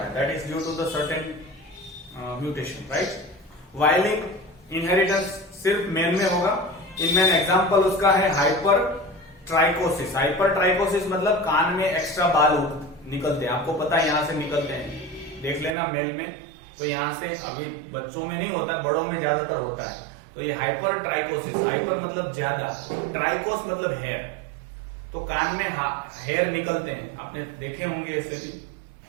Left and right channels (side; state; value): left; drops out; at 15.8 s